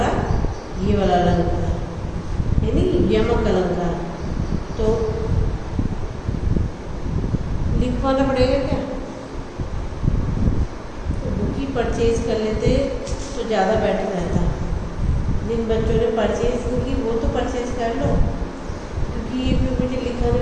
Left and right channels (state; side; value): identical; both; correlation 1.00